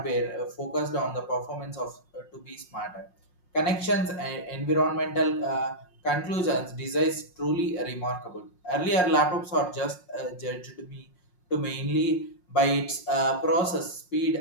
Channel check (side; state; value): right; late; 5.6 ms